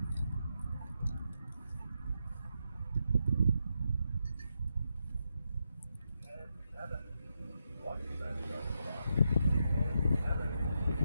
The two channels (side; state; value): both; inverted; correlation -0.83